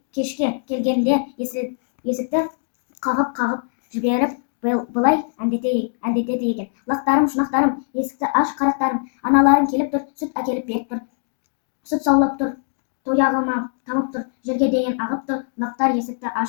кешке келгенде есікті қағып жіберіп, былай әндетеді екен: лақтарым, шұнақтарым, есікті аш, қарақтарым, аналарың келіп тұр, сүт әкеліп беріп тұр, сүт саулап тұр, тояғыма тамып тұр, жерге дейін ағып тұр. Лақтар есікті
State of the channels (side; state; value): right; silent; digital silence